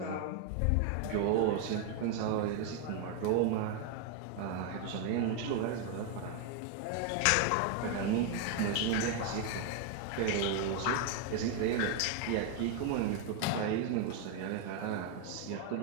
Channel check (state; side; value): different; both; correlation 0.01